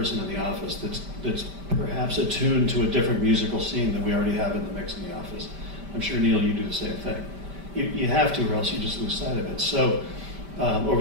in the office that's perhaps attuned to a different musical scene than we already have in the mix in the office. I'm sure, Neil, you do the same thing. You have to, or else you just lose sight of it. So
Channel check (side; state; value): left; late; 5.1 ms